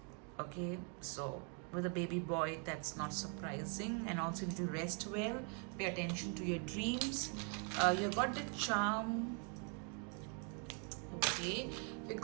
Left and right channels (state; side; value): quieter; left; 39.8 dB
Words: Okay, so with a baby boy, that's not surprising. And also you need to rest well, pay attention to your dreams. You got the charm. Okay, you